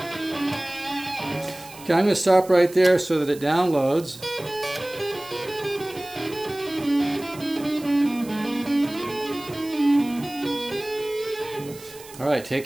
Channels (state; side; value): noise; right; hiss, 19 dB below the sound